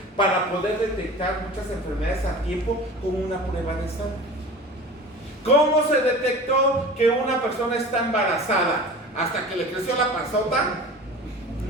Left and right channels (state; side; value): normal; both; correlation 0.37